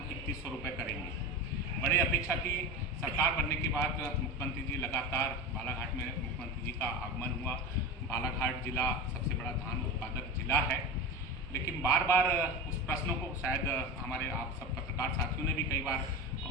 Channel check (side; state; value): both; normal; correlation 0.24